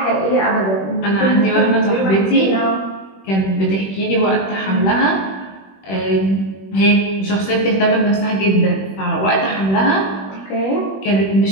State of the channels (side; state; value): right; late; 21 ms